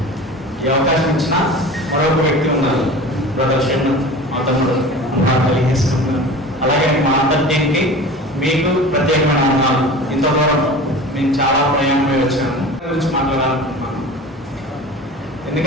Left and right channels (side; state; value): both; normal; correlation 0.37